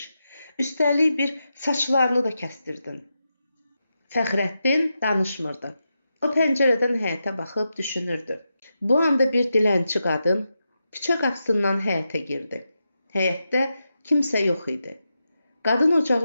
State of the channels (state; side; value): inverted; both; correlation -0.88